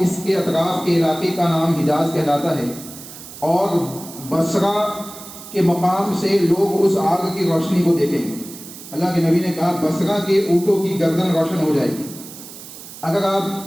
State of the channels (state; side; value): noise; right; hiss, 15 dB below the sound